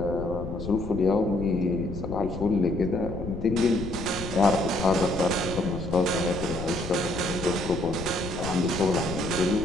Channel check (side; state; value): left; noise; rumble, 8 dB below the sound